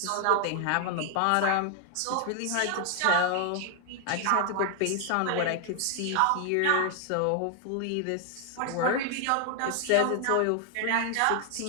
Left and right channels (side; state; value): both; different; correlation 0.00